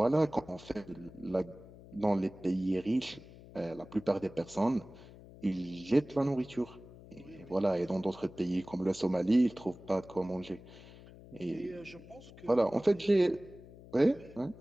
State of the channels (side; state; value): left; noise; hum, 19 dB below the sound